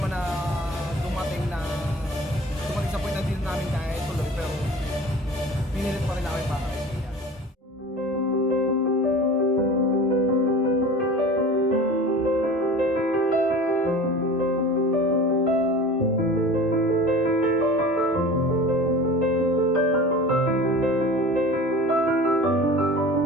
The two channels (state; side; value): normal; both; correlation 0.38